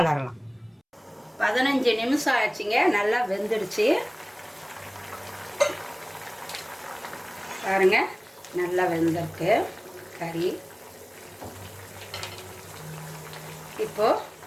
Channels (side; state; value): both; identical; correlation 1.00